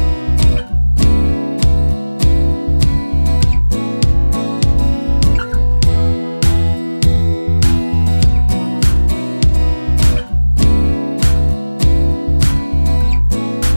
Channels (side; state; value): both; inverted; correlation -1.00